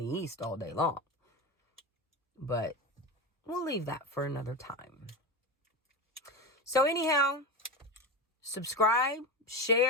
east all day long. But we'll leave that for another time. So anyhow, subscribe,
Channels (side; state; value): both; normal; correlation 0.21